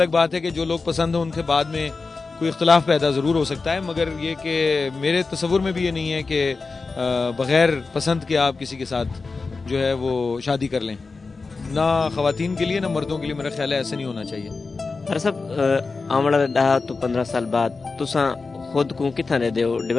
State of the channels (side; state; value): right; quieter; 4.2 dB